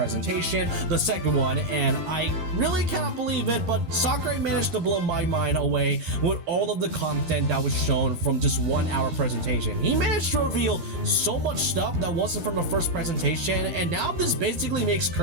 the second one, and I really cannot believe it, but Sakurai managed to blow my mind away with all of the content that was shown from just 1 hour presentation. He managed to reveal so much stuff that wasn't from the first presentation, and now this basically makes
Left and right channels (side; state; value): left; late; 12 ms